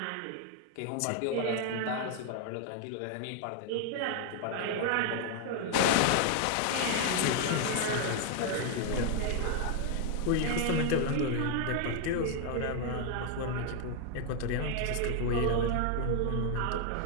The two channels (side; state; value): both; different; correlation 0.00